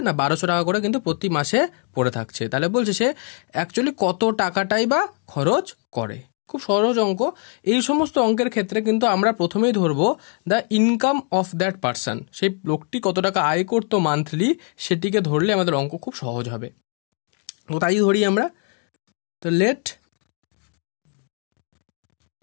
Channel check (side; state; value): right; quieter; 38.0 dB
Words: না 1200 টাকা করে কিন্তু প্রতি মাসে পড়ে থাকছে। তাহলে বলছে সে অ্যাকচুয়ালি কত টাকাটাই বা খরচ করে। খুব সহজ অঙ্ক। এই সমস্ত অঙ্কের ক্ষেত্রে কিন্তু আমরা প্রথমেই ধরবো the income of that person, সেই লোকটি কত টাকা আয় করতো মান্থলি, সেটিকে ধরলে আমাদের অঙ্ক খুব সহজ হবে। তো তাই ধরি আমরা। তো let